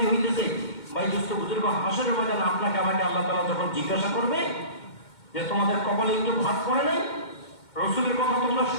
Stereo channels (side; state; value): right; late; 2.1 ms